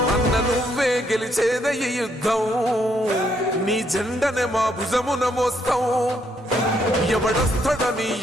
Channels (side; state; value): both; normal; correlation 0.73